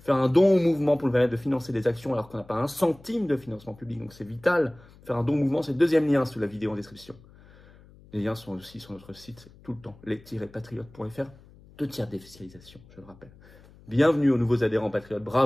Faire un don au mouvement pour le permettre de financer des actions alors qu'on n'a pas un centime de financement public, donc c'est vital. Faire un don au mouvement, c'est le deuxième lien sous la vidéo en description. Les liens sont aussi sur notre site tout le temps, les-patriotes.fr, 2/3 défiscalisation, je le rappelle. Bienvenue aux nouveaux adhérents patriotes,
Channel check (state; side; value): noise; left; hum, 24 dB below the sound